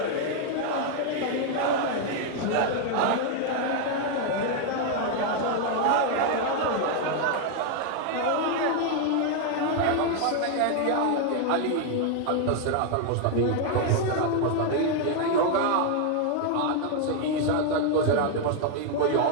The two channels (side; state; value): both; different; correlation 0.00